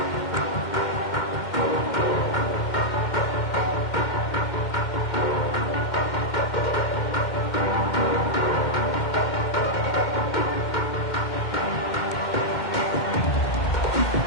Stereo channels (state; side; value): late; right; 2.1 ms